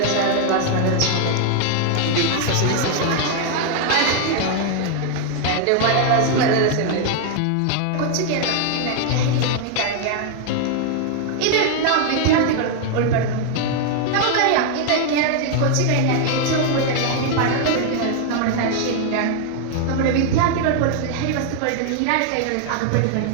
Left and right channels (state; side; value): different; both; correlation 0.00